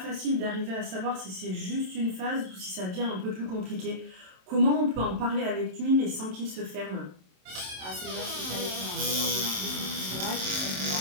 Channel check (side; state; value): left; late; 27 ms